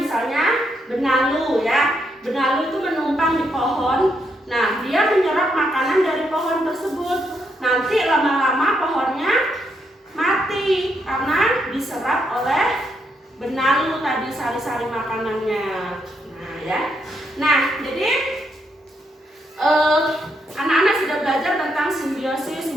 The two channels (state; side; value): normal; both; correlation 0.78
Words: benalu ya. Benalu itu menumpang di pohon. Nah, dia menyerap makanan dari pohon tersebut. Nanti lama-lama pohonnya mati karena diserap oleh benalu tadi sari-sari makanannya. Nah, ya. Nah, jadi anak-anak sudah belajar tentang simbiosis,